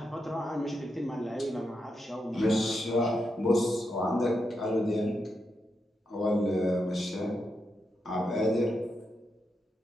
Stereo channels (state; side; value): normal; both; correlation 0.85